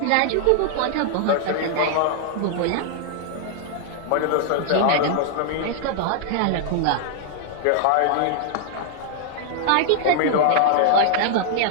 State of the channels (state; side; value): different; both; correlation -0.01